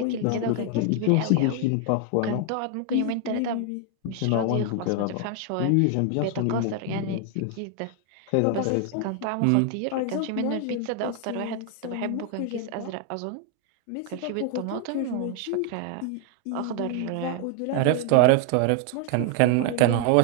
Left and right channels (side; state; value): both; different; correlation 0.00